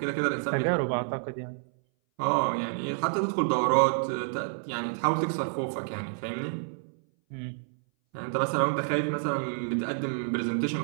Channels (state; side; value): silent; left; 58 dB below the other